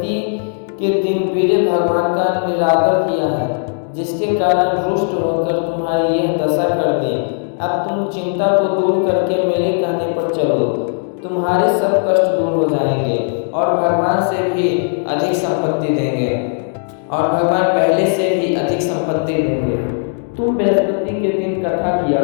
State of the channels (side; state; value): right; silent; digital silence